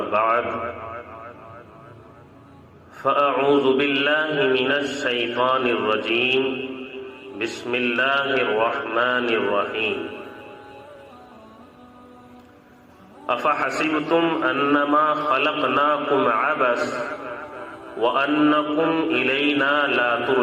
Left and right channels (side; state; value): both; identical; correlation 1.00